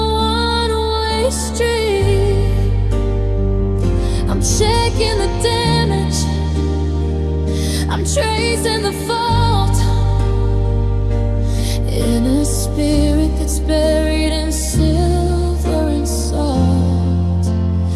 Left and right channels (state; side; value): identical; both; correlation 1.00